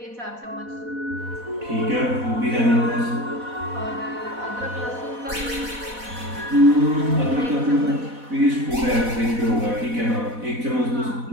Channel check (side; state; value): left; late; 4.1 ms